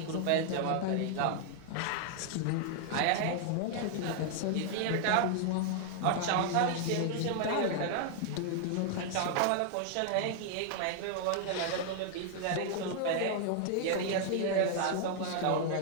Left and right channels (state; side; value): different; both; correlation 0.00